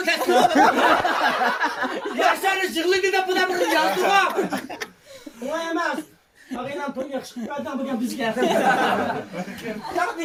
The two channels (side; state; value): both; identical; correlation 1.00